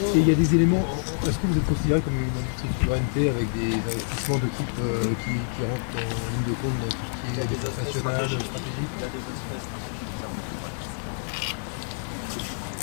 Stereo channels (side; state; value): right; silent; digital silence